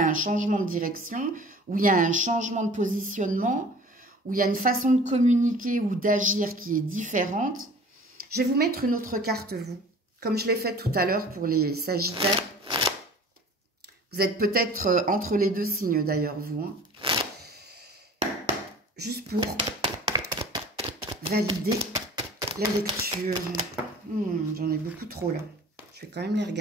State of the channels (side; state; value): both; normal; correlation 0.45